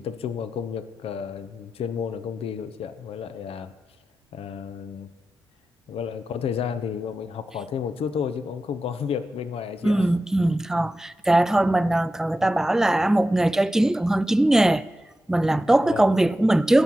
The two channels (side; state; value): both; normal; correlation 0.92